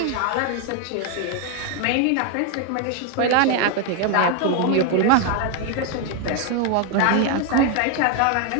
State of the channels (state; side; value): different; both; correlation 0.01